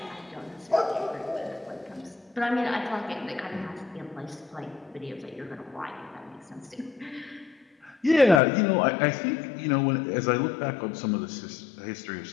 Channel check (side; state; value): right; drops out; at 8.4 s